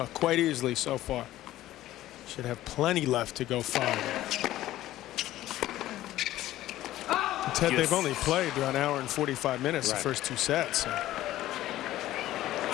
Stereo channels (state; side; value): quieter; right; 14.7 dB